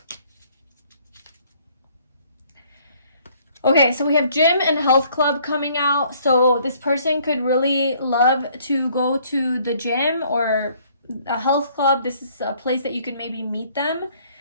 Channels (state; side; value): inverted; both; correlation -0.61